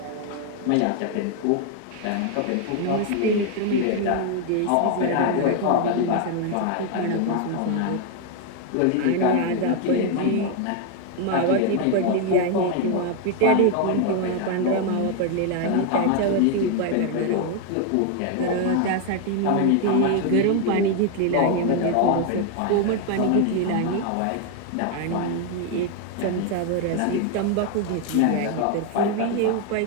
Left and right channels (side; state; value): both; different; correlation 0.01